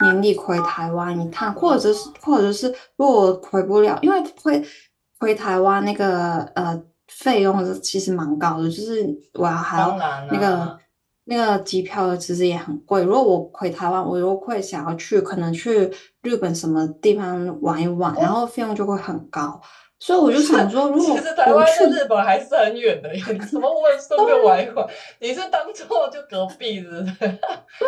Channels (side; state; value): both; identical; correlation 1.00